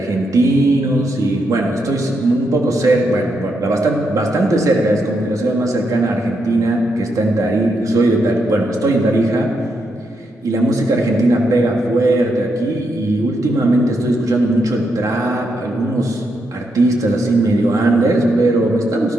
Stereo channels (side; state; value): both; normal; correlation 0.81